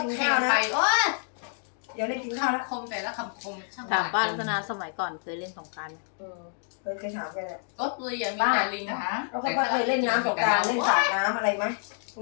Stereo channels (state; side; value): silent; right; digital silence